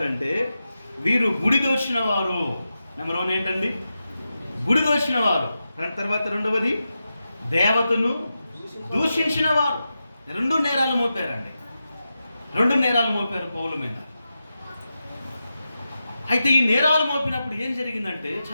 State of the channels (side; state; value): both; inverted; correlation -0.90